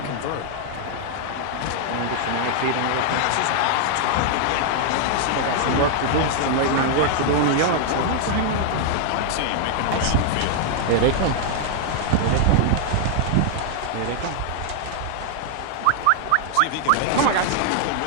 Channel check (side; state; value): both; different; correlation 0.00